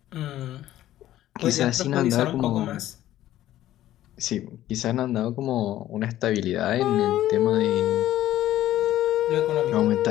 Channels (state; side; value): quieter; right; 13.6 dB